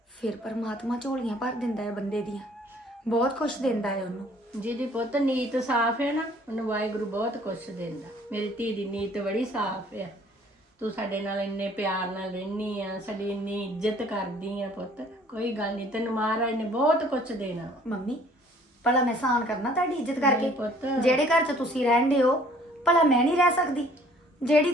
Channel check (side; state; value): both; normal; correlation 0.57